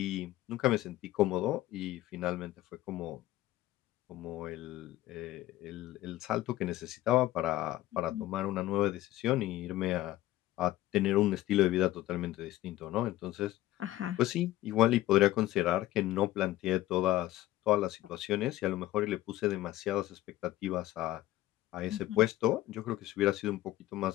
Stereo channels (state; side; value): quieter; right; 15.4 dB